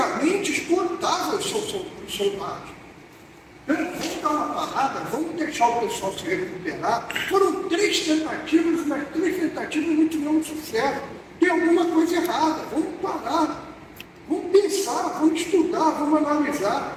esgotava os soldados. Então, vamos dar uma parada, vamos deixar o pessoal se recuperar. Foram 3 tentativas, mas 3 tentativas não tiveram sucesso. Tem alguma coisa errada, vamos parar. Vamos pensar, vamos estudar, vamos analisar.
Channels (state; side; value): identical; both; correlation 1.00